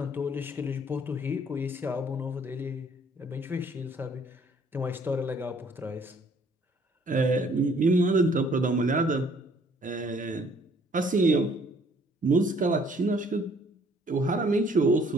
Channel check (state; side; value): normal; both; correlation 0.60